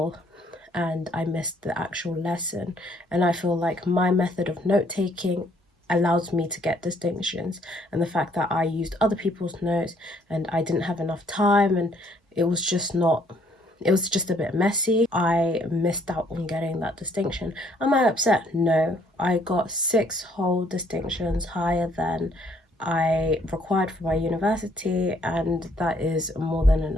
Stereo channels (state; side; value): normal; both; correlation 0.65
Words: and I missed the actual lesson, and I feel like my method of note-taking allows me to get distinctions, and the fact that I used other people's notes and I didn't have enough time and it was just a bit messy, I missed out on getting that distinction. Am I upset? No. I got 6 whole distinctions, higher than I required for my university, and that is more than